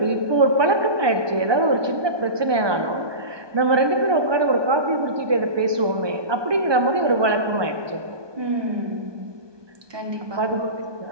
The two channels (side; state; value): left; late; 1.2 ms